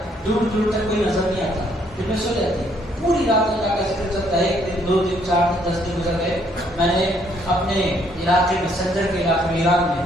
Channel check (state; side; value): normal; both; correlation 0.67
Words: دور دور تک کوئی نظر نہیں آتا، پھر میں سو جاتی، پوری رات اللہ کا ذکر چلتا ہے، 1 دن 2 دن 4 دن 10 دن گزر گئے۔ میں نے اپنے علاقے میں، سنجر کے علاقے میں، ایران میں،